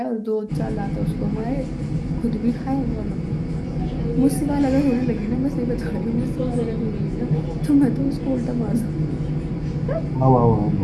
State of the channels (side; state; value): both; identical; correlation 1.00